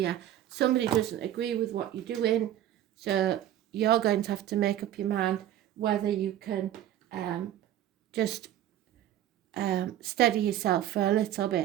Somebody doesn't agree with what you're doing, so you're going to have to make up your mind whether you can just steady yourself for a little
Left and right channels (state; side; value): quieter; left; 12.1 dB